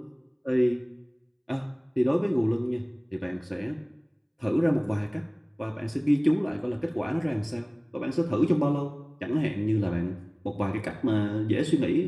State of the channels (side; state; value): both; identical; correlation 1.00